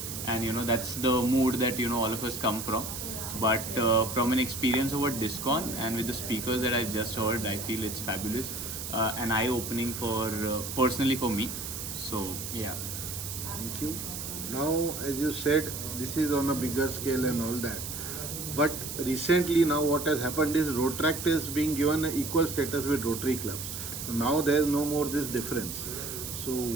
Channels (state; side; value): noise; right; hiss, 7 dB below the sound